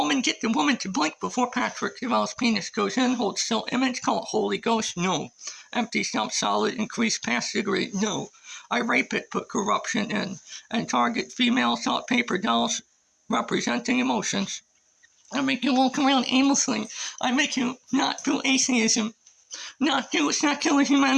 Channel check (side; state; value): both; identical; correlation 1.00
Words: the woman to blink before Patrick Deval's penis goes in, hold still image, call it Holy Ghost, no. Empty stump solid, increase pass degree, no. I rape it, put corruption in, and target female salt paper dolls representing emotions. I make you walk around aimlessly. I make you not do atheism, not do secular